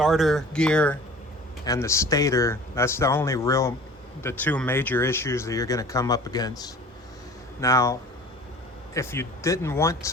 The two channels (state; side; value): normal; both; correlation 0.44